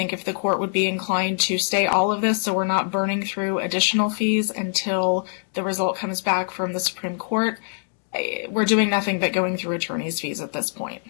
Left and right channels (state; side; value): silent; right; digital silence